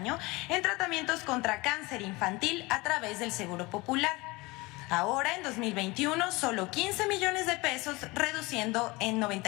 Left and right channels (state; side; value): quieter; right; 23.4 dB